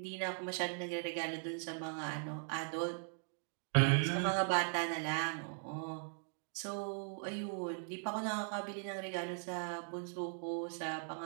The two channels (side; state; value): left; silent; 51 dB below the other